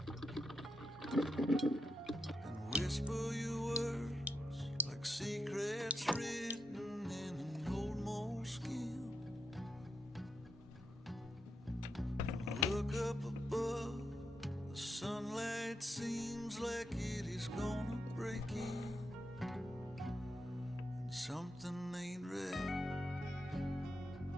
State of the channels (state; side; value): normal; both; correlation 0.84